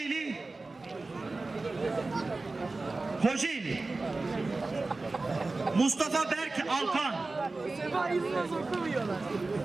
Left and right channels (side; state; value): left; quieter; 3.4 dB